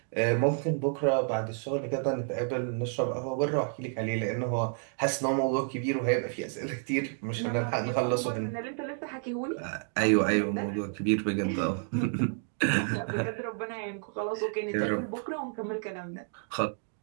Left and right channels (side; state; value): left; silent; 58 dB below the other